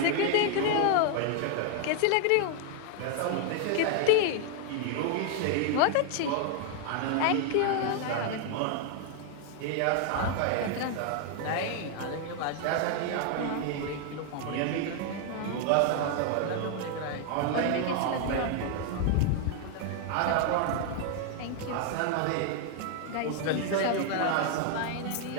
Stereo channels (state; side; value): different; both; correlation 0.00